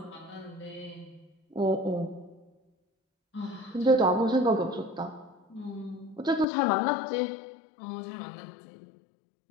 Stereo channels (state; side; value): drops out; right; at 6.5 s